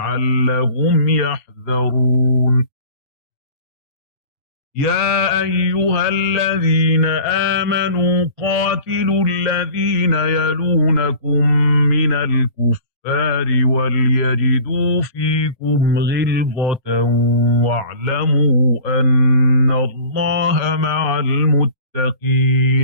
يحذرون. يا أيها الذين آمنوا قاتلوا الذين يلونكم من الكفار وليجدوا فيكم غلظة واعلموا أن الله مع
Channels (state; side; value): late; right; 4.3 ms